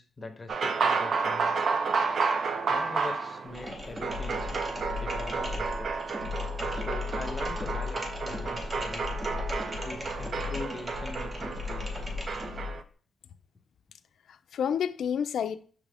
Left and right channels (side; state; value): both; normal; correlation 0.79